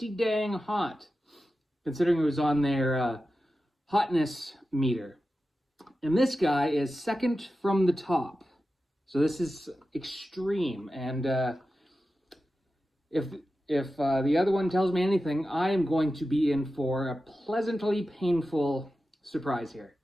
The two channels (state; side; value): normal; both; correlation 0.92